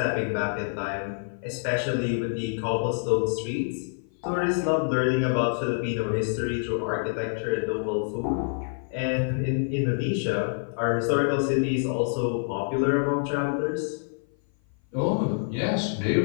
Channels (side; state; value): right; silent; 56 dB below the other